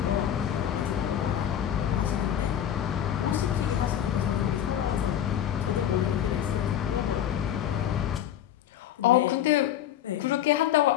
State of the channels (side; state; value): right; quieter; 10.5 dB